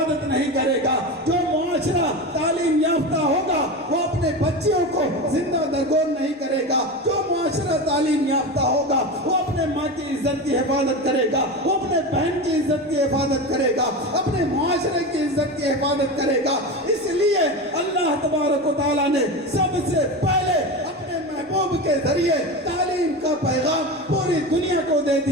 نہیں کرے گا. جو معاشرہ تعلیم یافتہ ہوگا وہ اپنے بچیوں کو زندہ درگور نہیں کرے گا. جو معاشرہ تعلیم یافتہ ہوگا وہ اپنے ماں کی عزت کی حفاظت کرے گا، وہ اپنے بہن کی عزت کی حفاظت کرے گا، اپنے معاشرے کی عزت کی حفاظت کرے گا. اس لیے اللہ تبارک و تعالیٰ نے سب سے پہلے اپنے محبوب کے ذریعے تعلیم کا پیغام پوری دنیا کو دے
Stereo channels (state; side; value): normal; both; correlation 0.23